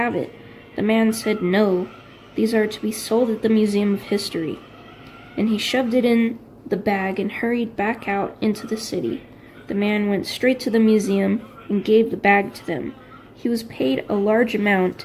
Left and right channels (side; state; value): both; identical; correlation 1.00